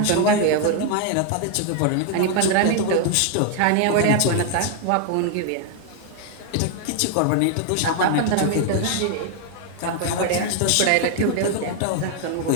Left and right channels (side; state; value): both; different; correlation 0.00